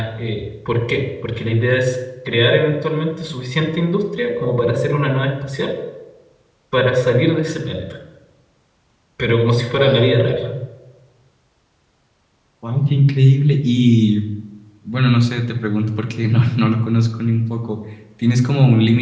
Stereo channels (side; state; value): both; identical; correlation 1.00